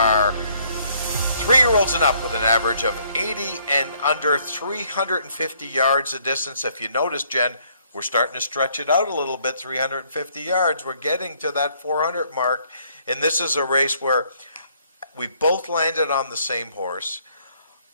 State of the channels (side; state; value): both; inverted; correlation -0.66